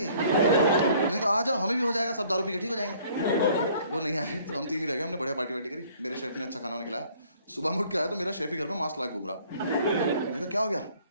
मैंने कहा आ जाओ हमें भी हो जाएगा, सब दारू पी के ठीक हो जाएंगे। वो नहीं आए तो हम 3 ही रह गए। हमने बढ़िया पार्टी वार्टी करी, मेरे शेफ ने अच्छा खाना वाना खिलाया। सुबह में उठ के आया तो मेरा शेफ ही घर में मास्क लगा घूम रहा। मैंने कहा क्या हो गया?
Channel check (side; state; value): both; inverted; correlation -0.57